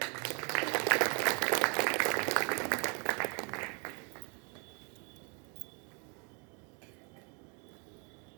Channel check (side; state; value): left; quieter; 35.0 dB